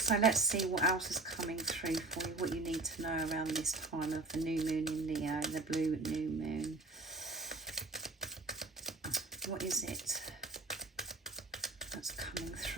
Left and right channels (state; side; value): quieter; left; 3.1 dB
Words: let's see what else is coming through for you, what you need to know around this time of the new moon in Leo, the blue new moon. What is it that's coming